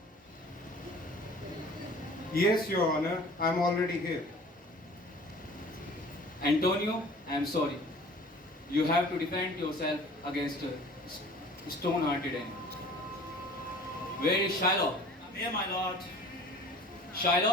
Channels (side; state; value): both; normal; correlation 0.46